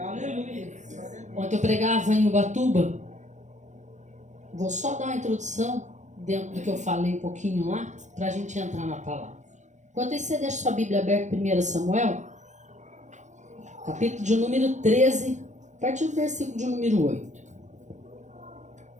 Ontem eu pregava em Ubatuba. Vou só dar uma introdução dentro do que eu falei um pouquinho lá, para a gente entrar na palavra. Enquanto isso, você deixa sua Bíblia aberta, 1 Samuel, capítulo de número 13, a partir do versículo de número 8.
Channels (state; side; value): late; left; 0.35 ms